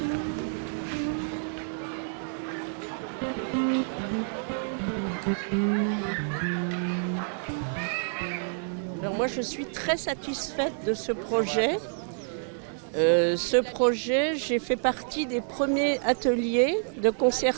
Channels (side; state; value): left; silent; digital silence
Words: Alors moi je suis très satisfaite de ce projet. J'ai fait partie des premiers ateliers de